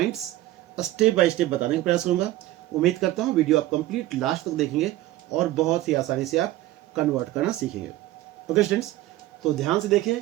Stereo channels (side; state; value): left; quieter; 15.9 dB